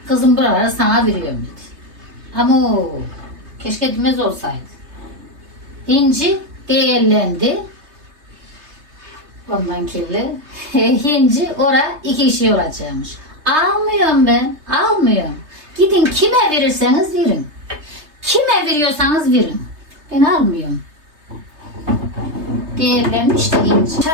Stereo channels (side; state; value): left; late; 3.3 ms